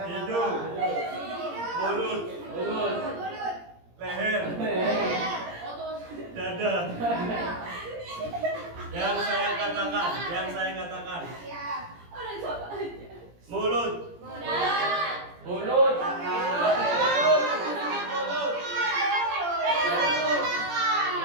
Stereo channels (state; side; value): late; left; 17 ms